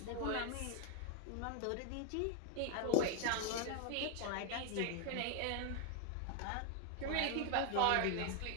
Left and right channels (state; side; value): different; both; correlation 0.00